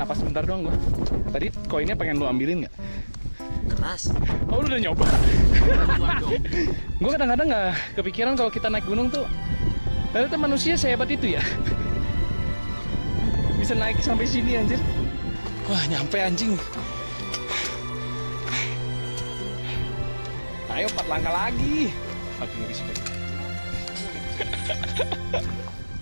sebentar doang gua. Tadi koinnya pengen lu ambilin gak? Keras. Oh lu udah nyoba? Gua kadang-kadang gak kepikiran kalau kita naik gunung tuh ternyata manusia sehebat itu ya. Bisa naik sampai sini anjir. Wah nyampe anjing. Ayo 4 langkah lagi. Fucking respect.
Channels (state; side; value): inverted; both; correlation -1.00